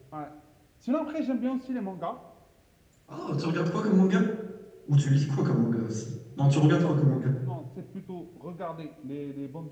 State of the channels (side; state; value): both; identical; correlation 1.00